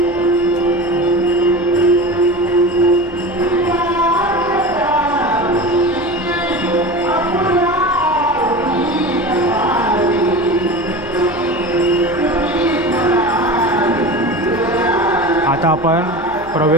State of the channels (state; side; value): noise; left; hum, 23 dB below the sound